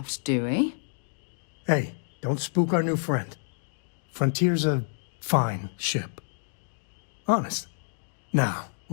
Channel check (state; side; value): silent; right; digital silence